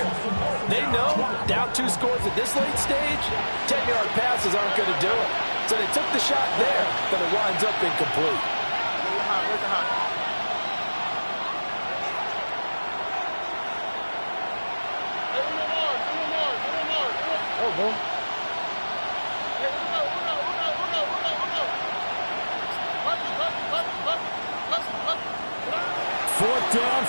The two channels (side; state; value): both; inverted; correlation -1.00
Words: They know down 2 scores at this late stage, 10-yard passes aren't going to do it. So they took the shot there, but it winds up incomplete. Fourth down,